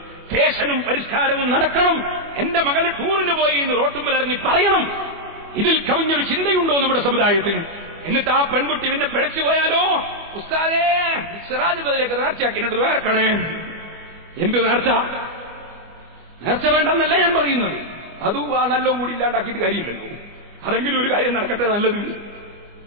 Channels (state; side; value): late; left; 25 ms